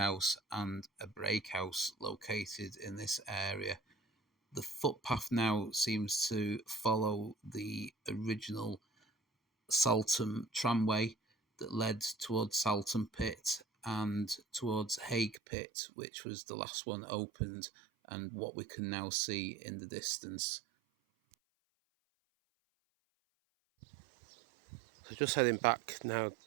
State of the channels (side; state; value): left; drops out; at 15.4 s